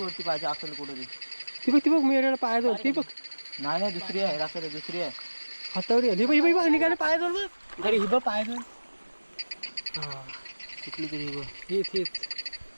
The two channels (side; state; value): both; inverted; correlation -1.00